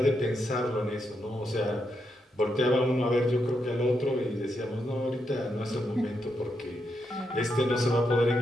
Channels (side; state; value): both; normal; correlation 0.82